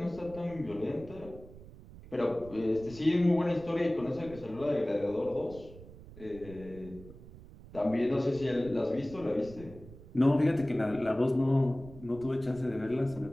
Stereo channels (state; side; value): noise; right; rumble, 17 dB below the sound